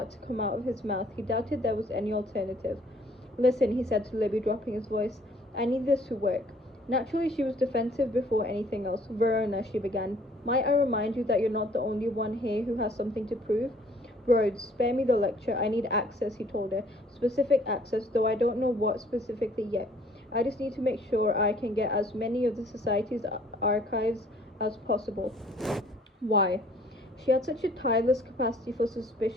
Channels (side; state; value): both; normal; correlation 0.58